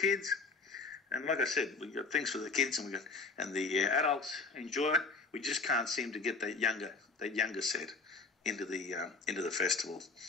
and like I said, we got things for the kids, and the adults enjoy it. We just can't seem to get that younger set into the festival.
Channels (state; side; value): quieter; right; 4.1 dB